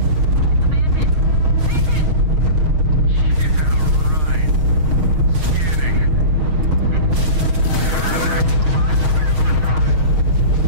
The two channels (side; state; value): left; late; 6.5 ms